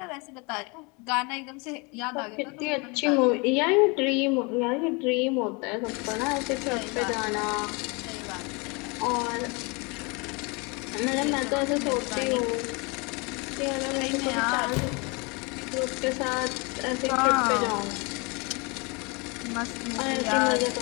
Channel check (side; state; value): right; quieter; 29.4 dB